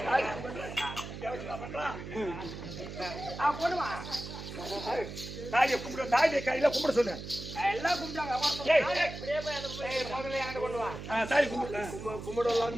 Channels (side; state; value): right; noise; hum, 10 dB below the sound